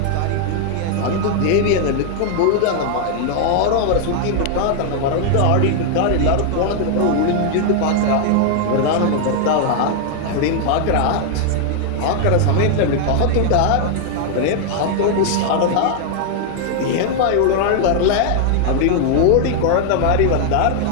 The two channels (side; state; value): both; different; correlation 0.00